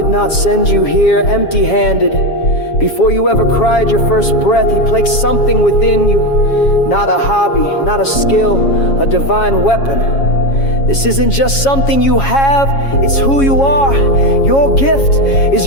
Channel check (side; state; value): right; late; 7.3 ms